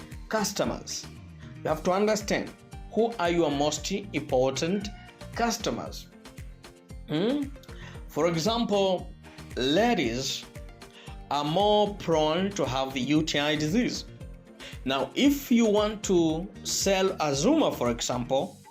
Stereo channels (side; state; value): both; identical; correlation 1.00